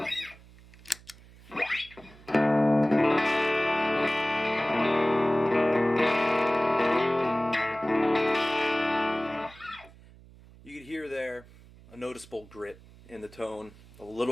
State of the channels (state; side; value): noise; right; hum, 23 dB below the sound